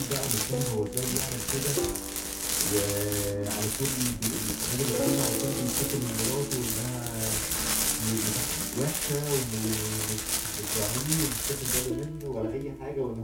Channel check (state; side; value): identical; both; correlation 1.00